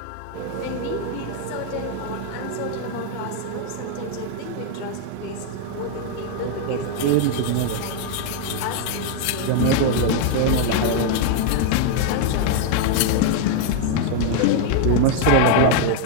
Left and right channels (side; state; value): both; different; correlation 0.00